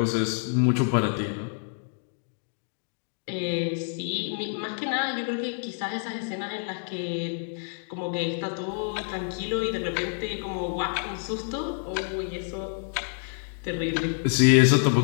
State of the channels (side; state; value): right; silent; digital silence